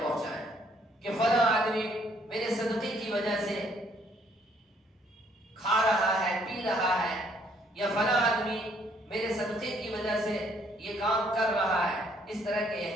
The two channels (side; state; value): both; normal; correlation 0.66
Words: پہنچائیں کہ فلاں آدمی میرے صدقے کی وجہ سے کھا رہا ہے، پی رہا ہے، یا فلاں آدمی میرے صدقے کی وجہ سے یہ کام کر رہا ہے۔ اس طرح کے